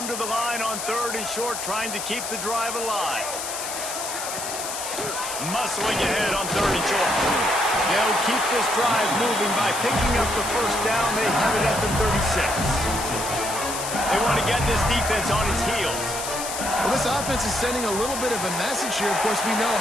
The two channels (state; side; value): noise; left; hiss, 6 dB below the sound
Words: to the line on third and short, trying to keep the drive alive. Muscling ahead on third and short. They'll keep this drive moving by picking up the first down. They have it at the 36. They want to get this defense on its heels. Well, this offense is sending a little bit of a message here. Of course, we know